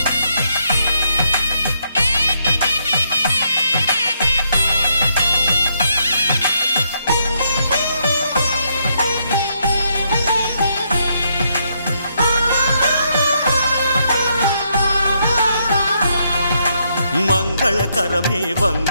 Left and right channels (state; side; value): inverted; both; correlation -0.76